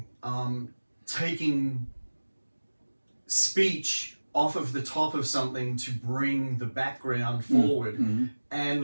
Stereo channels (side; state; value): both; inverted; correlation -1.00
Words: Taking speech off of the top of something to bring the background forward,